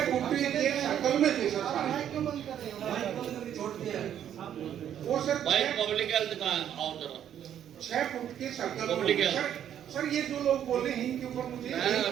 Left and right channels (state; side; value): quieter; left; 10.0 dB